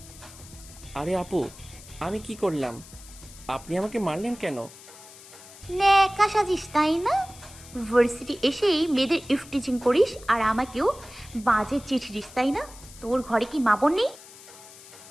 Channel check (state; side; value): noise; left; hiss, 19 dB below the sound